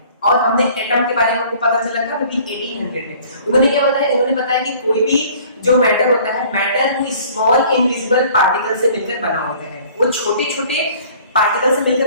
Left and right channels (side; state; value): both; inverted; correlation -0.52